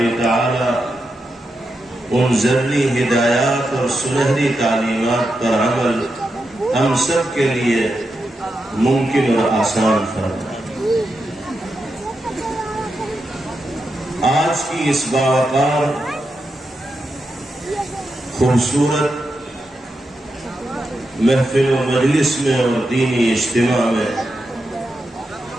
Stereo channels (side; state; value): both; normal; correlation 0.87